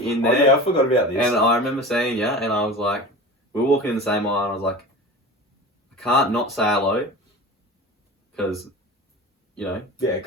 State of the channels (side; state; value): both; normal; correlation 0.33